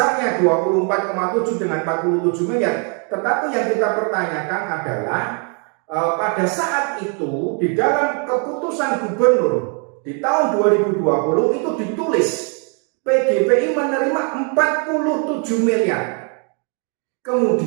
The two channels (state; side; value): quieter; left; 39.0 dB